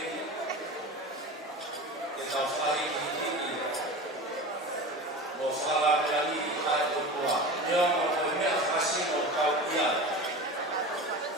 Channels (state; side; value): normal; both; correlation 0.31